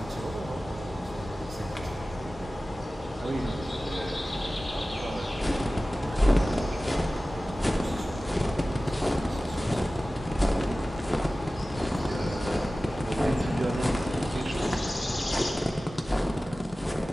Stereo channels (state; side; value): normal; both; correlation 0.96